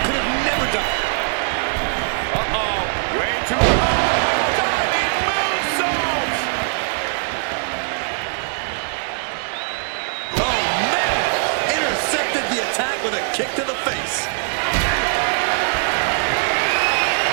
could have never done it. Uh-oh. Way too hard. Diving moonsault. Oh, man! Intercepted the attack with a kick to the face.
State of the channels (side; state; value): left; silent; digital silence